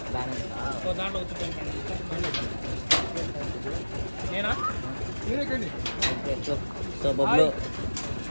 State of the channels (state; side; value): inverted; both; correlation -1.00